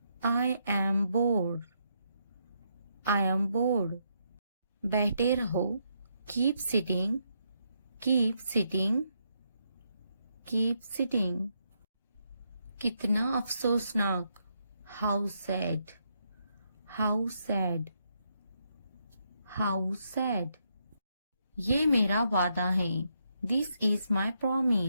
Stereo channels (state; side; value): inverted; both; correlation -0.78